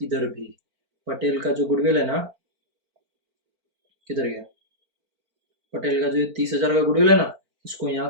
इधर भी। पटेल का जो गुडविल है ना, किधर गया? पटेल का जो 30,000 का गुडविल है ना, इसको यहाँ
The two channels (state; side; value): late; left; 4.4 ms